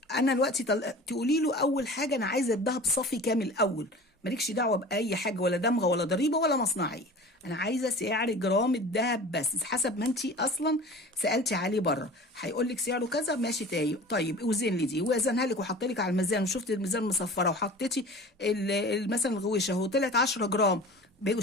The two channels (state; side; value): normal; both; correlation 0.40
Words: أنا دلوقتي تقولي له أول حاجة أنا عايزة الدهب صافي كامل الأول، مالكش دعوه باي حاجه ولا دمغه ولا ضريبه ولا مصنعيه، انا عايزه سعر جرام الذهب بس حسب ما انت اصلا سالتي عليه بره. هيقول لك سعره كذا، ماشي. طيب اوزن لي دي، وزنها لك وحط لك على الميزان وشفت الميزان مصفره وحطيتي مثلا الغويشه اهو طلعت 10 جرام،